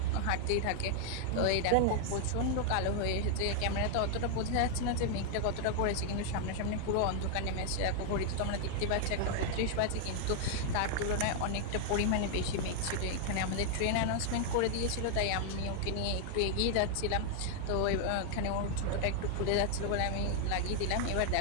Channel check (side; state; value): both; different; correlation 0.00